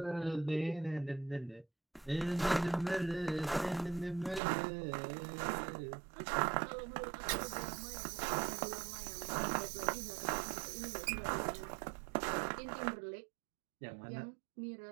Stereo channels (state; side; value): drops out; left; at 4.4 s